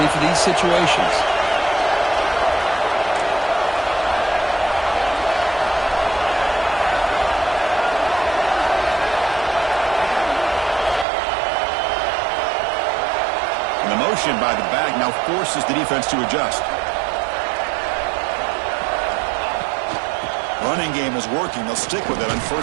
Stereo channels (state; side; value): drops out; left; at 11.1 s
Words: for these situations. By the back now forces the defense to adjust. Running game is working. They'll stick with it on